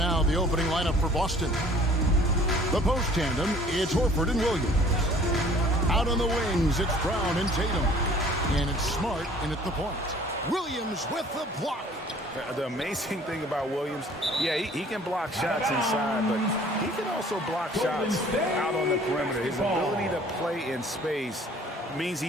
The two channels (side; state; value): both; normal; correlation 0.53